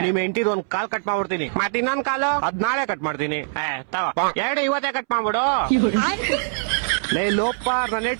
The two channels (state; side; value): silent; left; 64 dB below the other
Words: ನಿಮ್ ಹೆಂಡತಿದ್ ಒಂದ್ ಕಾಲ್ ಕಟ್ ಮಾಡ್ಬಿಡ್ತೀನಿ. ಮತ್ ಇನ್ನೊಂದ್ ಕಾಲು ಅದ್ ನಾಳೆ ಕಟ್ ಮಾಡ್ತೀನಿ. ಎರಡು ಇವತ್ತೇ ಕಟ್ ಮಾಡ್ಬಿಡು. ಲೇ ಲೋಪ, ನನ್ನ